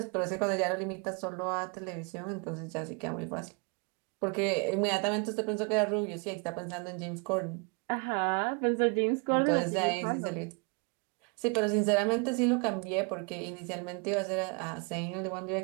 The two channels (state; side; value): quieter; left; 32.4 dB